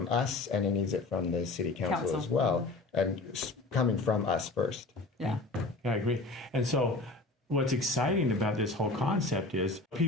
us, and he needs it from the city council as well, and coming from us first. Yeah, I agree. And so what's exciting about this whole concept is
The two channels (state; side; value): quieter; right; 3.2 dB